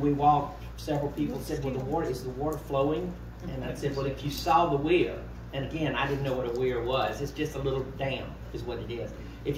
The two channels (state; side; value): identical; both; correlation 1.00